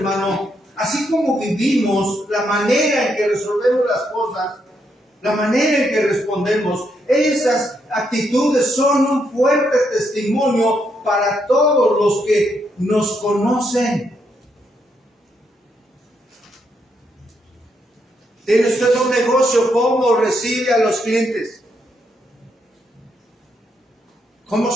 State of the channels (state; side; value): normal; both; correlation 0.78